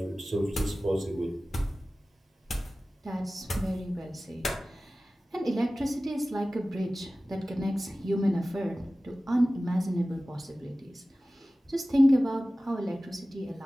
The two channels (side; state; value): both; normal; correlation 0.96